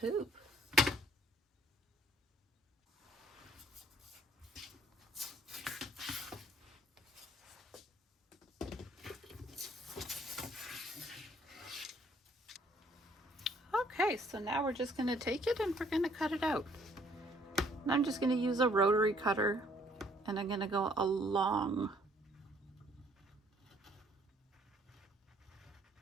Okay, so now we're just going to take it and we're going to cut it out. And I'm just going to use a rotary cutter and I'm going to go along.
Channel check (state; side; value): normal; both; correlation 0.62